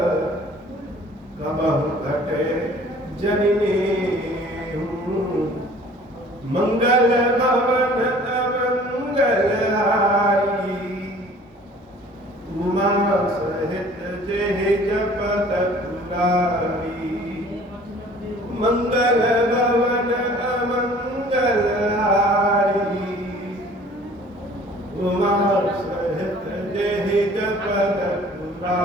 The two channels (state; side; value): normal; both; correlation 0.51